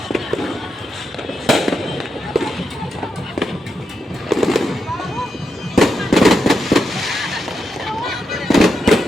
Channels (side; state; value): both; normal; correlation 0.85